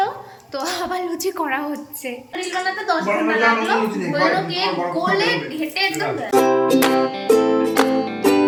তো আবার লুচি করা হচ্ছে। রিল বানাতে 10 ঘন্টা লাগলো, হলো কেক গোলে ঘেটে একদম।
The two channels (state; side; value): identical; both; correlation 1.00